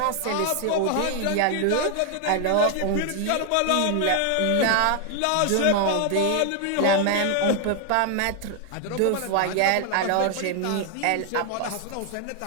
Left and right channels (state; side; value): different; both; correlation 0.01